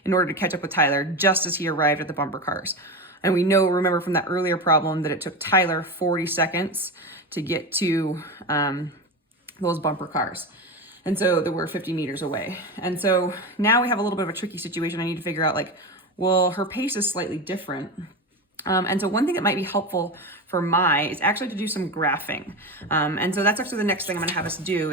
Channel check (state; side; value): normal; both; correlation 0.21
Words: in order to catch up with Tyler just as he arrived at the bumper cars. And we remember from that earlier problem that it took Tyler 40 seconds to get to those bumper cars. And so they were 50 meters away. And so now we have a little bit of a tricky situation. I need to figure out, like, well, her pace is slightly different. And so one thing that might be helpful for Mai is actually to do some graphing. And so that's actually the next thing I'm going to have us do,